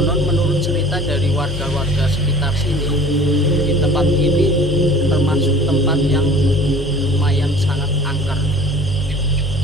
menurut cerita dari warga-warga sekitar sini, di tempat ini termasuk tempat yang lumayan sangat angker.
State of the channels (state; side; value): noise; right; rumble, 19 dB below the sound